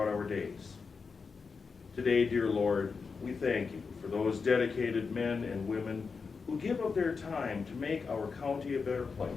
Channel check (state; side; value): quieter; right; 5.1 dB